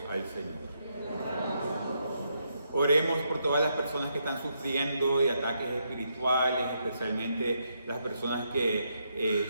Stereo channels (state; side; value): inverted; both; correlation -0.78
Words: al Señor. Oremos por todas las personas que están sufriendo de ataques espirituales, especialmente las personas